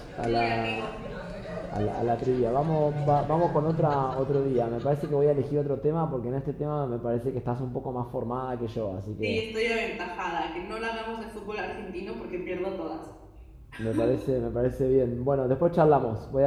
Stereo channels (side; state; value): both; identical; correlation 1.00